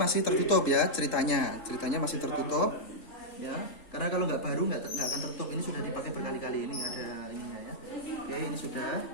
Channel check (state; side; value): late; right; 3.8 ms